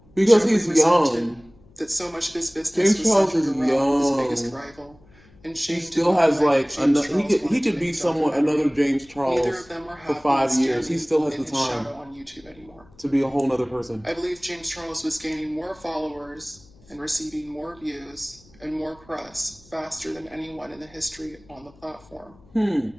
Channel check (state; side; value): noise; left; hum, 27 dB below the sound